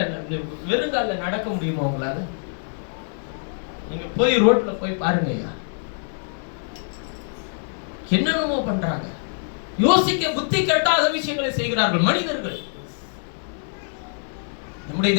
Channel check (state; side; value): silent; right; 62 dB below the other